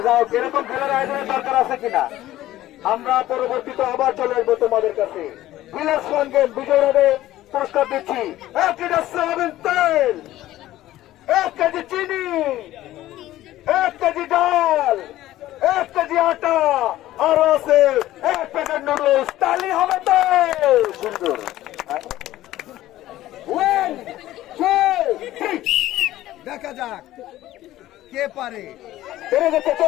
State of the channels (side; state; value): right; quieter; 14.9 dB